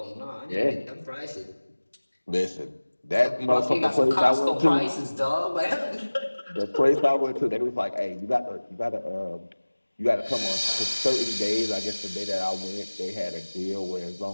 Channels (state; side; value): inverted; both; correlation -1.00